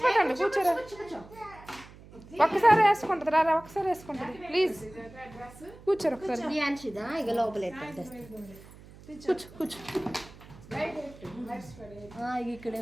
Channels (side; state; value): right; noise; hum, 20 dB below the sound